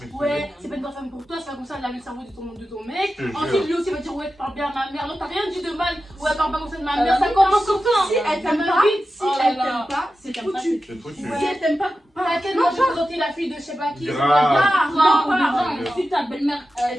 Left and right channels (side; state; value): both; normal; correlation 0.92